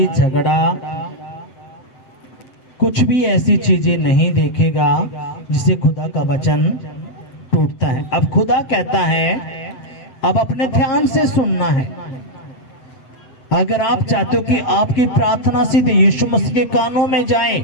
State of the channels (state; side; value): late; right; 7.9 ms